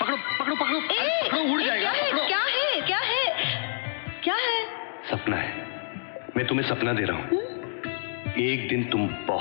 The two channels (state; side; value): silent; right; digital silence